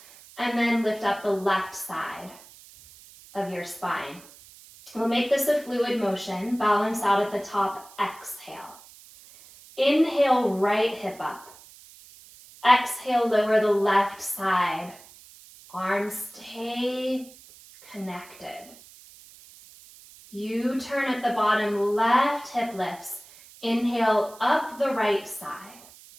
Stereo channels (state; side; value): noise; right; hiss, 22 dB below the sound